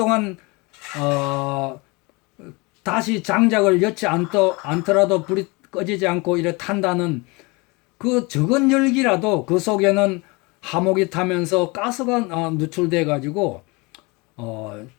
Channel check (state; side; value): quieter; right; 26.6 dB